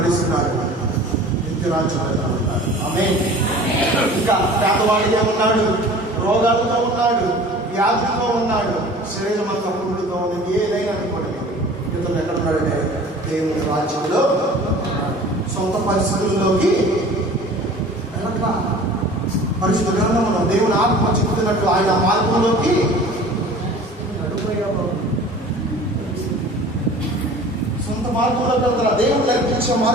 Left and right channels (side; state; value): both; normal; correlation 0.44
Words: నిత్యరాజ్యం ఉంటాడు. ఆమేన్. ఇంకా పేదవాడిగా ఉన్నాడు, రోగాలతో ఉన్నాడు, వ్యాధితో ఉన్నాడు, శరీరం అంతా పురుగులతో ఉన్నది. ఏదైనా అనుకోండి, ఇతను ఎక్కడ ఉన్నాడంటే దేవుని రాజ్యంలో. సొంత పరిస్థితుల్లోకి వెళ్ళట్లా. పరిశుద్ధ గ్రంథంలో దేవుని ఆత్మ చెబుతున్నట్టు ఆయన మార్గంలోకి నడిపోయావు. సొంత మార్గంలోకి వెళ్తారా? దేవుడు నేర్పించే